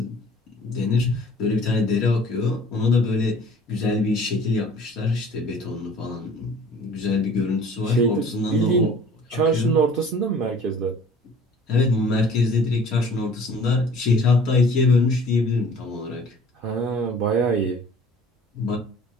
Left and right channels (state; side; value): normal; both; correlation 0.50